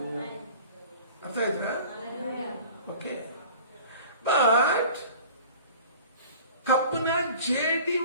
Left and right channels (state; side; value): inverted; both; correlation -0.43